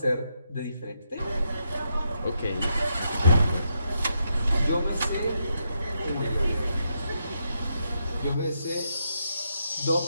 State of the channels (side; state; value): both; inverted; correlation -0.81